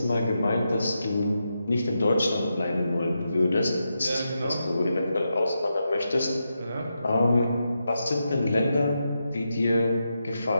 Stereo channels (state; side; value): inverted; both; correlation -0.86